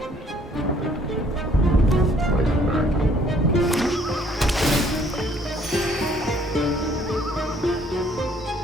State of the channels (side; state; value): both; normal; correlation 0.61